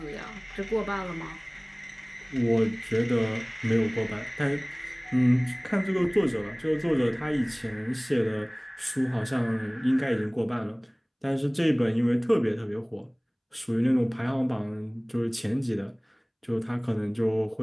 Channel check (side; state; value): both; identical; correlation 1.00